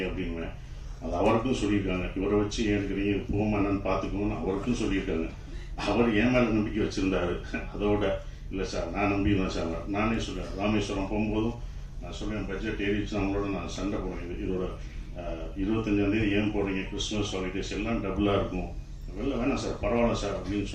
அப்படின்வேன். அது அவருக்கும் சொல்லியிருக்காங்க. இவரை வச்சு ஏன் எடுக்கிறீங்க, போமா என்னன்னு பார்த்துக்கணும்னு அவருக்கும் சொல்லியிருக்காங்க. அவர் என் மேலே நம்பிக்கை வச்சிருந்தாரு. அதோட இல்லை சார் நான் நம்பிடுவேன் சார். நானே சொல்லுவேன், ராமேஸ்வரம் போகும்போதும் நான் சொல்லுவேன், பட்ஜெட் ஏறிச்சு நம்மளோட நான் சண்டை போடுவேன். இதோட 25ஆம் தேதி ஏன் போடுறீங்க, கிறிஸ்துமஸ் ஹாலிடேஸ் எல்லாம் டபுளாக இருக்கும், வெளில வேணாம் சார் பரவாயில்ல சார் அப்படின்னு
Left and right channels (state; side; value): identical; both; correlation 1.00